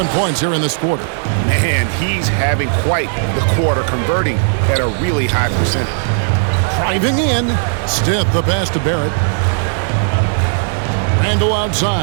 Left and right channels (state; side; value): silent; left; 59 dB below the other